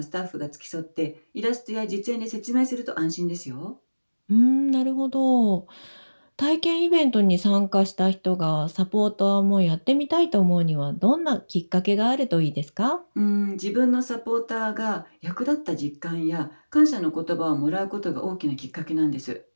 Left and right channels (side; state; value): both; inverted; correlation -1.00